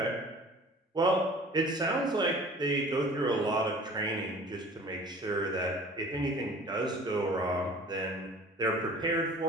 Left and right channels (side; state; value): both; normal; correlation 0.46